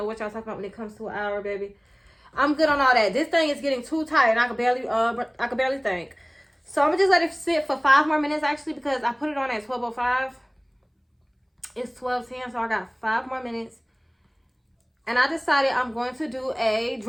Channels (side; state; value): both; identical; correlation 1.00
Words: what y'all talking about when it comes to an hour, baby. I'm good on all that. This thing is getting too tight and I can barely think. So I'm gonna just let it sit for 5 more minutes actually because I put it on at 12:05. It's 12:10, so I got 5 more minutes. And I decided I'm going to do a